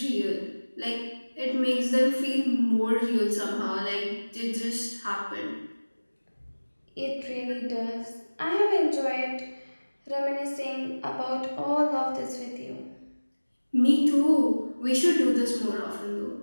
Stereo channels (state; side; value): inverted; both; correlation -1.00